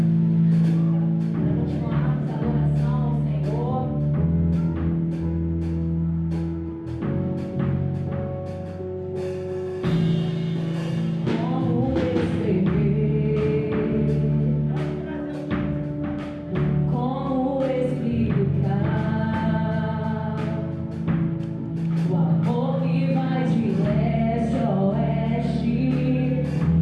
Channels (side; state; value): both; identical; correlation 1.00